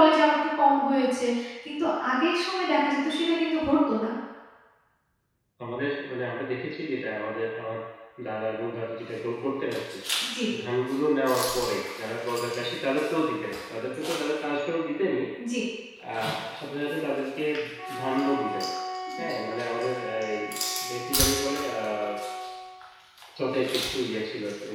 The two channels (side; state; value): both; identical; correlation 1.00